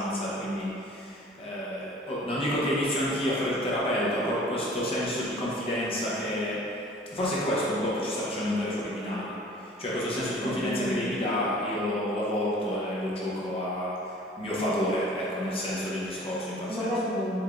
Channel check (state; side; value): normal; both; correlation 0.48